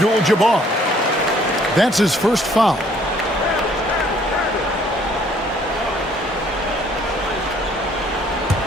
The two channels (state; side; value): normal; both; correlation 0.61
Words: That's his first foul.